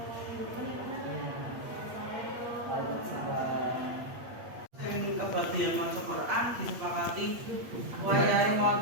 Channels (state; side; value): late; left; 8.5 ms